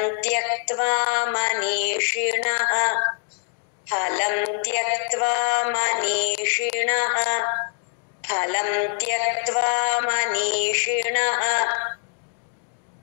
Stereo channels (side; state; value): right; silent; digital silence